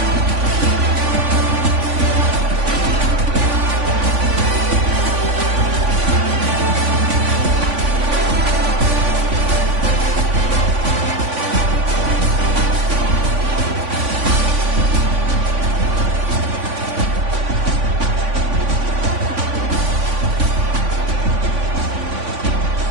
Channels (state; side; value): late; left; 3.5 ms